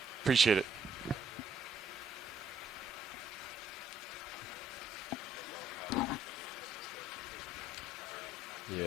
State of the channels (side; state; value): both; normal; correlation 0.68